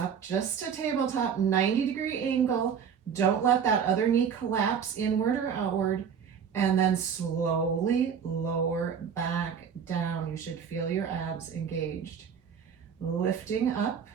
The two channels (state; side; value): quieter; left; 7.3 dB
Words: just a tabletop, 90-degree angle. Don't let that other knee collapse inward or outward. And then slowly lower back down. You should feel your abs engaged. Lifting up,